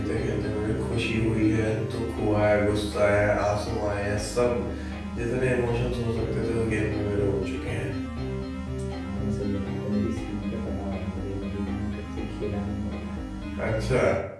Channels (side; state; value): both; identical; correlation 1.00